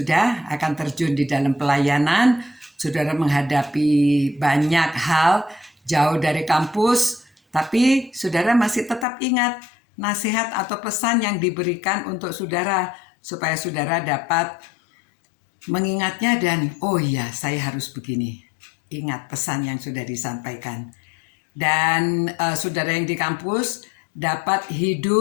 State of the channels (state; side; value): drops out; right; at 9.1 s